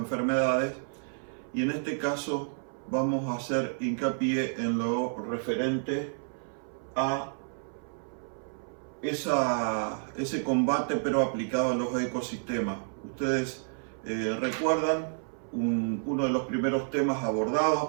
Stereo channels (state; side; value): silent; left; 58 dB below the other